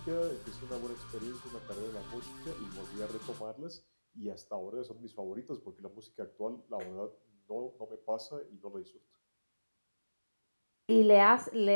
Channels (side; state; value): both; inverted; correlation -1.00